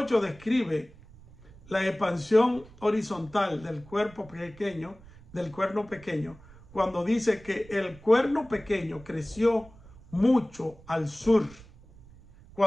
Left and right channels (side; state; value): right; noise; rumble, 22 dB below the sound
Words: describe la expansión horizontal del cuerpo pequeño, del cuerno pequeño, cuando dice que el cuerno pequeño creció mucho al sur.